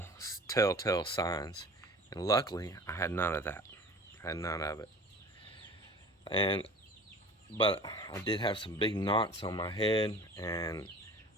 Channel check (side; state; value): both; normal; correlation 0.42